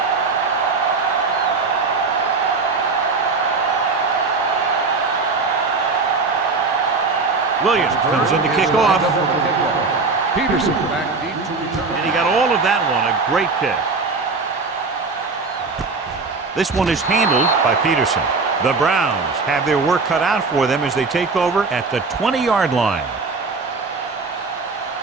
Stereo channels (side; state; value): left; quieter; 4.2 dB